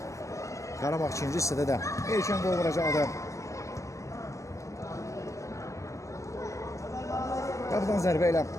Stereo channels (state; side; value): late; right; 0.15 ms